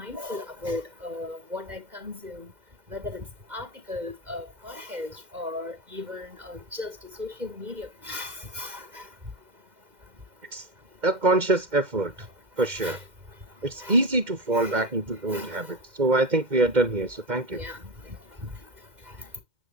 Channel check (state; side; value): late; left; 2.1 ms